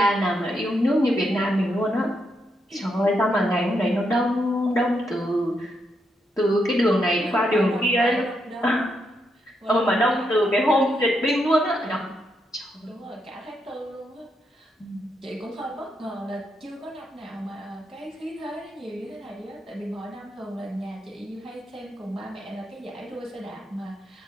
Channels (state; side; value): normal; both; correlation 0.80